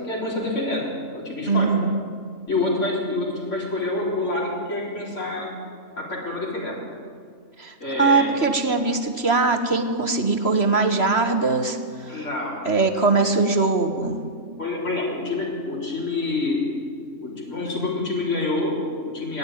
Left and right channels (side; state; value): right; late; 3.0 ms